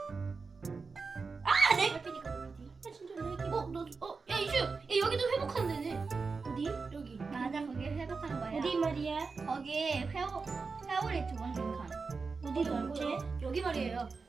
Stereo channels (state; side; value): quieter; left; 4.5 dB